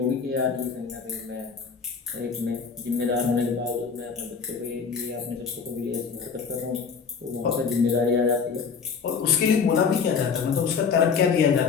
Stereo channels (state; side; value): quieter; right; 5.9 dB